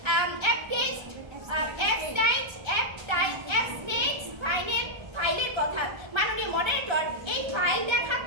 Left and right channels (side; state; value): left; late; 1.3 ms